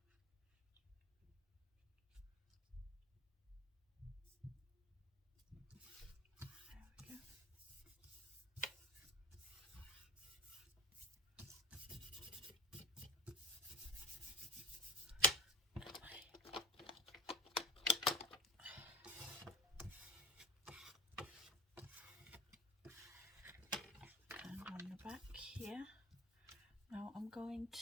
Back here. Now I'm going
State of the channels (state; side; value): normal; both; correlation 0.32